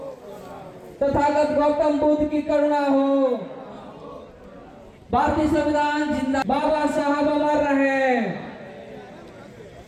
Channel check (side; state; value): both; identical; correlation 1.00